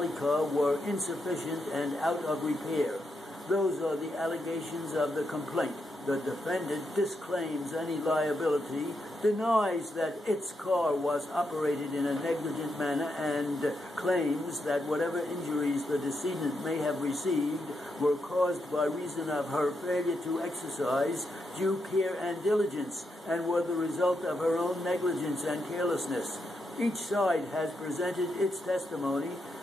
car were insufficient and out of repair. Those are the allegations of the complaint. The defendant disclaims any liability, denies that its car was operated in a negligent manner, and claims that whatever injuries the decedent may have received were caused by reason of her failure to exercise due care and diligence, and were the result of her own negligence and carelessness. Each side has presented its testimony,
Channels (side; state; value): both; normal; correlation 0.83